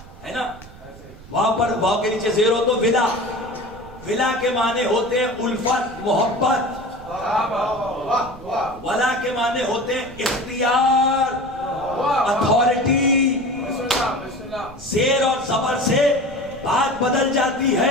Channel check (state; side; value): noise; right; rumble, 19 dB below the sound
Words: ہے نا؟ واو پر واو کے نیچے زیر ہو تو ولا۔ ولا کے معنی ہوتے ہیں الفت، محبت۔ ولا کے معنی ہوتے ہیں اختیار، اتھارٹی۔ زیر اور زبر سے بات بدل جاتی